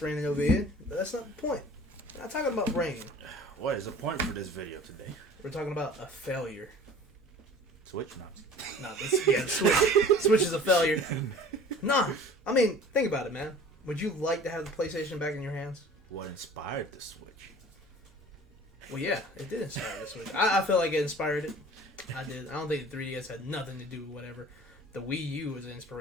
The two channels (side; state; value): both; normal; correlation 0.45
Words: raining over here, but that's not the point. We're not talking about rain. What is the point for this video today? We're talking about a failure. Switch not. No, Switch is a failure. Nah, I mean, think about it, man. Would you like to have the PlayStation back in your hands? What inspired the Switch? Well, yeah, it did inspire the Switch. I feel like it inspired it. I did. I don't think the 3DS had nothing to do with whatever. The Wii U was the